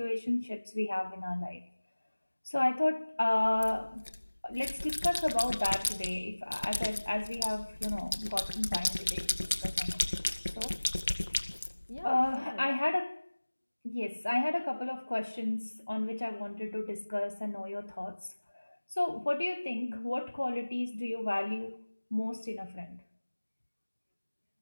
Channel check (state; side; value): inverted; both; correlation -1.00